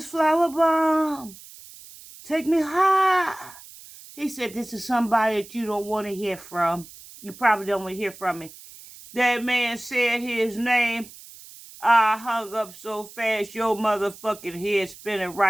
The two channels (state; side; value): noise; right; hiss, 19 dB below the sound